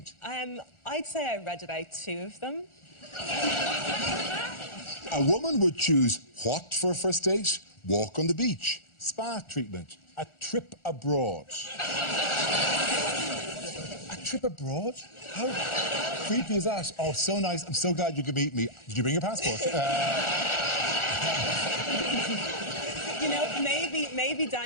I'd say I read about 2 of them. A woman would choose what for a first date? Walk on the beach. Spa treatment, a trip abroad. A trip abroad? How creepy is that? Oh, so nice. I'm so glad you could meet me. Did you bring your passport? You know, maybe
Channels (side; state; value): right; late; 1.4 ms